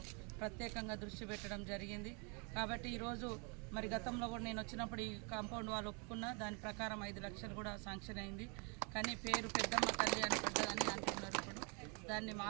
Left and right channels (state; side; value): quieter; left; 34.4 dB